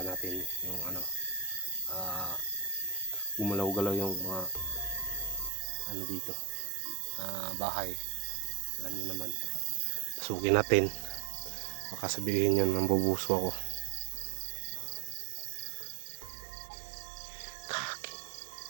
natin yung gumalaw-galaw yung mga dito, bahay. Alam niyo naman, pasukin natin, baka sabihin yun nambubuso ako.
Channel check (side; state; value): left; drops out; at 5.5 s